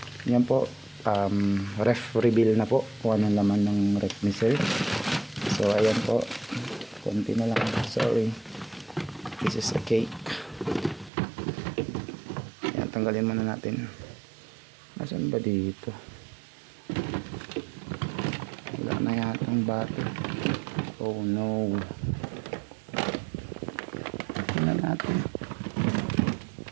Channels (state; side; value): drops out; left; at 11.1 s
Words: Yan po. Ref reveal na po kung anong laman ng ref ni sir. So ayan po, konti na lang, sorry, this is a cake. Ayan, tanggalin muna natin. Nasaan ba dito? Wala na yatang butter. Oh no. Tingnan natin.